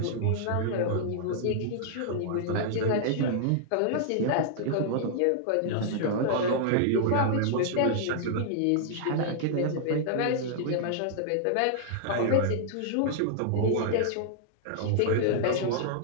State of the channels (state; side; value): different; both; correlation -0.01